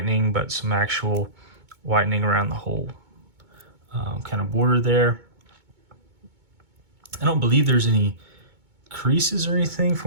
but some actual whitening around the whole kind of border there. I don't believe there's any creases or anything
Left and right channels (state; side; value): late; left; 2.2 ms